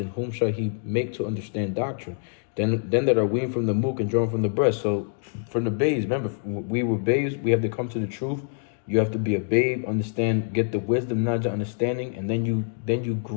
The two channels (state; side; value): silent; right; 61 dB below the other